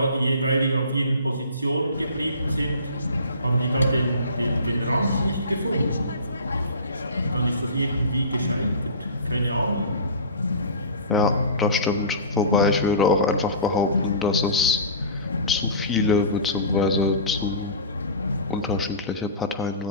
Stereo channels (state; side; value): inverted; both; correlation -0.36